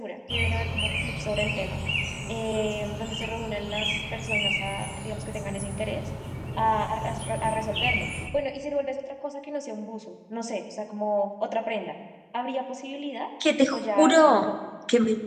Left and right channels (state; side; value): identical; both; correlation 1.00